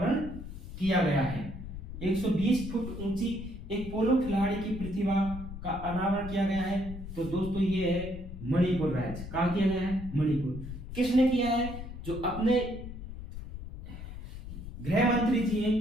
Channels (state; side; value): noise; left; rumble, 10 dB below the sound